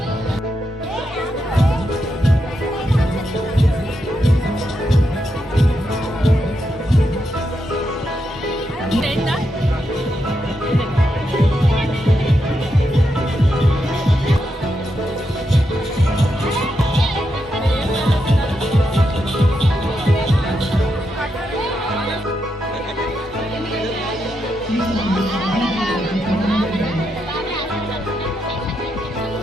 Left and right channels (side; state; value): both; normal; correlation 0.83